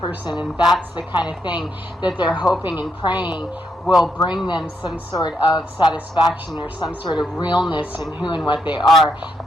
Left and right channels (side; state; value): both; normal; correlation 0.79